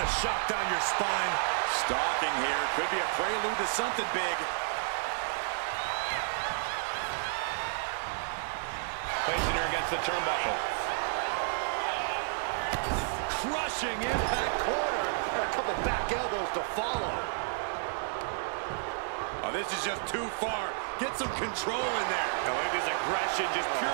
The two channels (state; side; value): silent; left; digital silence